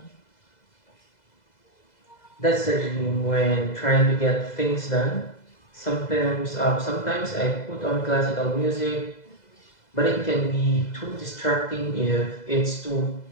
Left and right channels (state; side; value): late; right; 2.0 ms